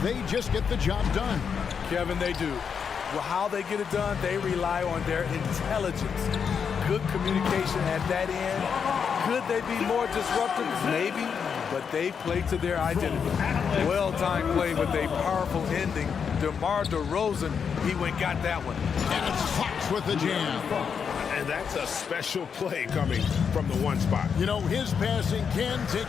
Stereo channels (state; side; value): quieter; right; 6.7 dB